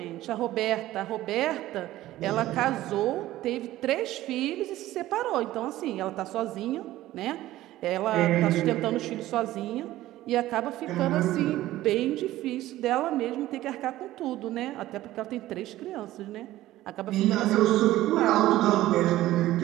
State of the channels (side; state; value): left; quieter; 15.4 dB